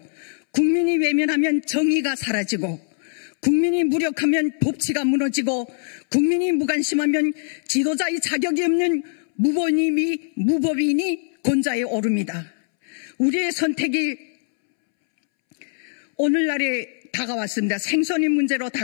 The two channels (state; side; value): silent; right; 64 dB below the other